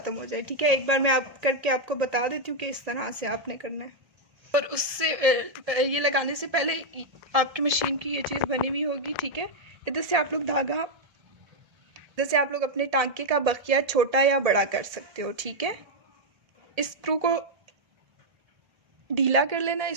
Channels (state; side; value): late; left; 1.7 ms